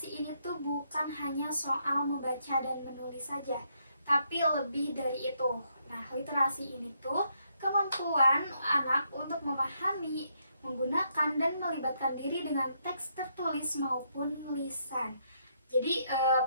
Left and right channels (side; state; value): both; inverted; correlation -0.75